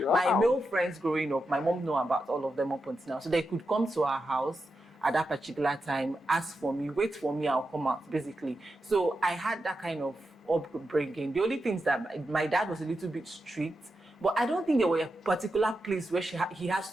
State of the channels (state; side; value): normal; both; correlation 0.88